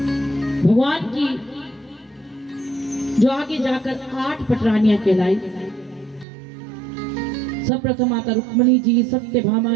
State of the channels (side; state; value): left; drops out; at 6.2 s